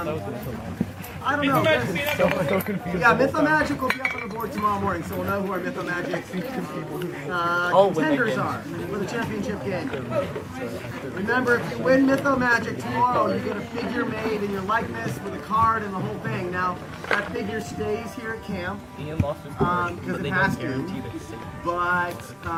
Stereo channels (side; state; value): both; identical; correlation 1.00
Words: don't know. Yeah, Mythomagic will be up on the board tomorrow morning, so we'll know who our Mythomagic contenders are for the championship game. Remember, if you win Mythomagic tomorrow, you get a figure made in your likeness with a card and the whole thing. Now, that figure stays here at camp because it has to, but